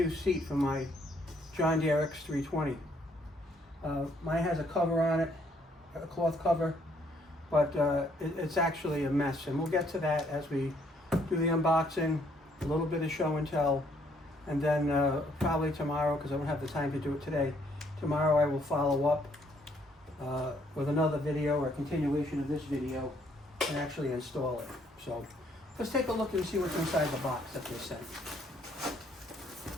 seat for my John Deere X300. Mine has a cover on it, a cloth cover, but it's actually a mess, and we'll get to that as we do the unboxing, a little bit of show and tell, and then probably tomorrow, because I don't have the time to do it today, tomorrow I will follow up with another video or a continuation of this video and actually install it. So let's take a look and see what's inside the box that they sent.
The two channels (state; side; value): normal; both; correlation 0.67